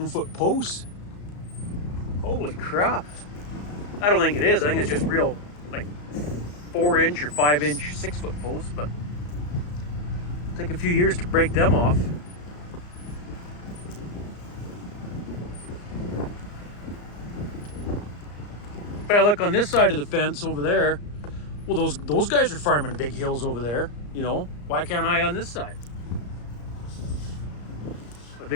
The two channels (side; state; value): right; late; 34 ms